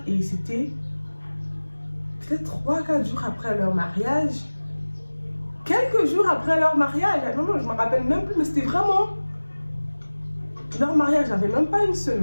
et c'était peut-être 3-4 jours après leur mariage. Quelques jours après leur mariage, non, je me rappelle même plus, mais c'était vraiment leur mariage, j'avais même pas une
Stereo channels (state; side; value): inverted; both; correlation -1.00